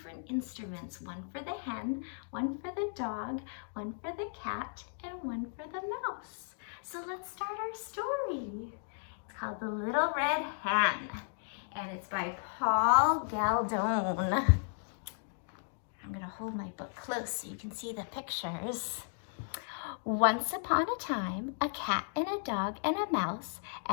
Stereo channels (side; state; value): right; silent; digital silence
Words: instruments. One for the hen, one for the dog, one for the cat, and one for the mouse. So let's start our story. It's called The Little Red Hen, and it's by Paul Galdone. I'm going to hold my book close so you can see the pictures. Once upon a time, a cat and a dog and a mouse